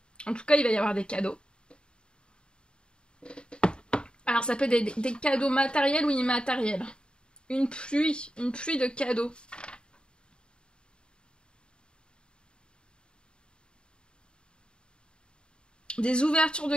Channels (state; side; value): late; right; 0.051 ms